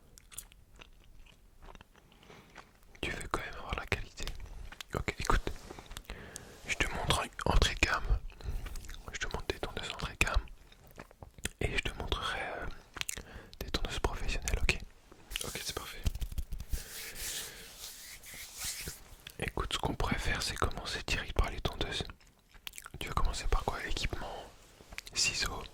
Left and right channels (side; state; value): both; identical; correlation 1.00